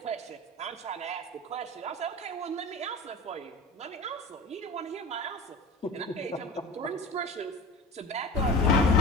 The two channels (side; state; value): both; normal; correlation 0.34